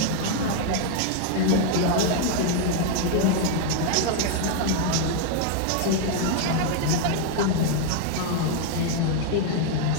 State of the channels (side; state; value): both; different; correlation 0.00